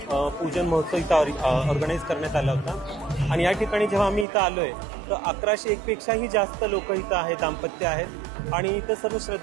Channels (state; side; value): drops out; left; at 4.2 s